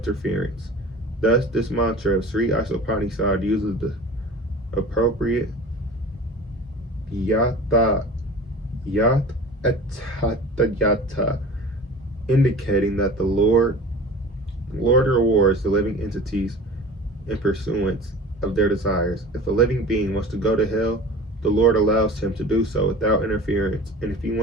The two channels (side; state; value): both; normal; correlation 0.39